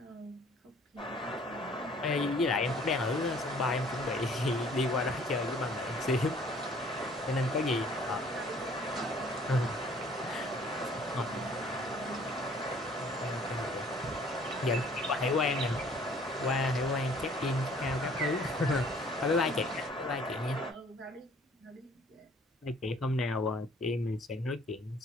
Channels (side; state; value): both; normal; correlation 0.56